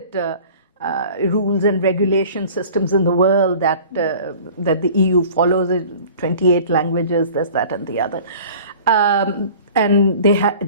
rules and regulation systems in the world that the EU follows. 28 languages, this, that, and the other, and they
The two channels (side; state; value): both; inverted; correlation -0.45